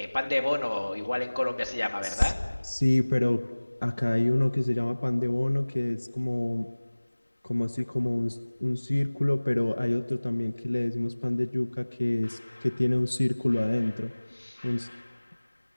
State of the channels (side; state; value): both; inverted; correlation -1.00